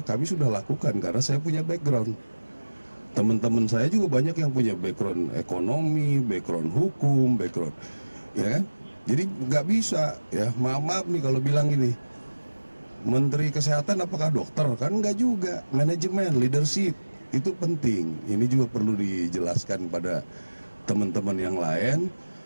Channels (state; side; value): inverted; both; correlation -1.00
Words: kami sudah lakukan karena saya punya background. Teman-teman saya juga banyak yang punya background ekonomi, background hukum, background ya kan. Jadi nggak bisa ya, maaf nih kalau bilang ini, Menteri Kesehatan apakah dokter? Kan nggak juga. Manajemen, leadership itu penting. Ini juga perlu dijelaskan pada teman-teman yang lain.